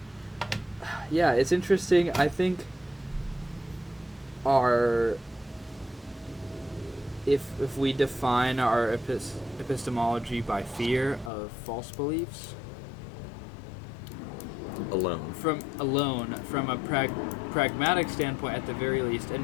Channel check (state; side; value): drops out; right; at 11.3 s